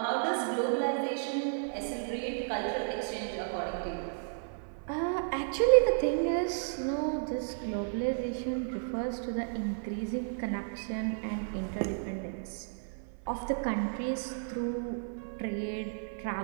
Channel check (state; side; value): silent; left; 56 dB below the other